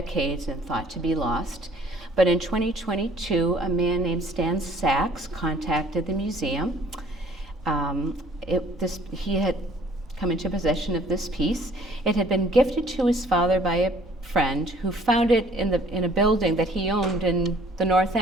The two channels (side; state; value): both; normal; correlation 0.56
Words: and thought to be lost. But in 2022, a man named Stan Sachs contacted the museum. He had come into possession of this piece. It had been gifted to his father by a friend who found it in a building that he owned in the North